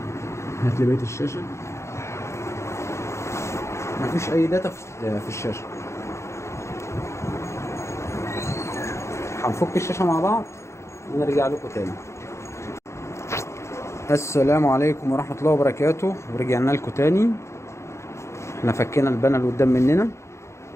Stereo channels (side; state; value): right; late; 0.13 ms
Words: هات لي بقية الشاشة. مفيش أي داتا في الشاشة. هنفك الشاشة مع بعض ونرجع لكم تاني. السلام عليكم ورحمة الله وبركاته، ورجعنا لكم تاني. احنا فكينا البانل قدام مننا،